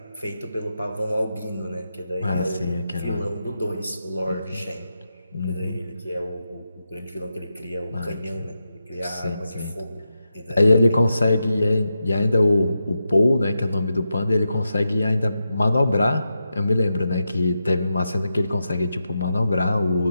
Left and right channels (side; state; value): both; inverted; correlation -0.88